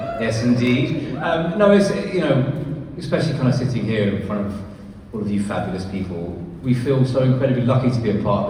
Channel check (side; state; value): both; identical; correlation 1.00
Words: Yes, indeed. No, it's, especially kind of sitting here in front of all of you fabulous people, we feel so incredibly lucky to be a